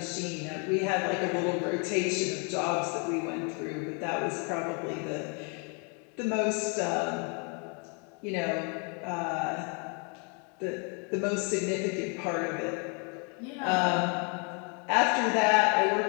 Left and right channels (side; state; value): right; quieter; 36.1 dB